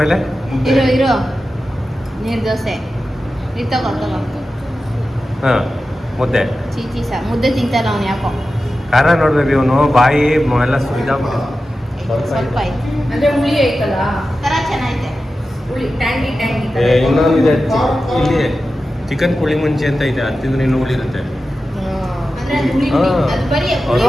ಇರೋ ನೀರು ದೋಸೆ. ನೀರು ತಗೋ. ಹಾಂ, ಮುದ್ದೆ, ಚೀಚಿ ಸಾರು. ಮುದ್ದೆ ತಿಂತಾರ ಅವನು ಯಾಕೋ. ಖಾರ ನೋಡ್ಬೇಕು, ಇವನು ಬಾಯಿ ಎಲ್ಲ ಸುರಿದಾಗ್ಬಿಟ್ಟು ಸ್ವಲ್ಪ ಐತೆ ಅಂದ್ರೆ ಹುಳಿ ಐತಲ್ಲ, ತರ ಚೆನ್ನಾಗಿದೆ. ಹುಳಿ ಟ್ಯಾಂಗಿ ಇನ್ನೊಂದಿದೆ ಇಲ್ಲಿ ಚಿಕನ್ ಪುಳಿ ಮುಂಚೆ ಅಂತ ಇದೆ, ಅದು ತಿಂದ್ರೆ ಇನ್ನೂ ಹುಳಿ ಇರುತ್ತೆ. ಅಂದ್ರೆ ಅದು ಹುಳಿ ಹಾ. ಅದು ಬರೀ ಅದು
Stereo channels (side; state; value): both; normal; correlation 0.93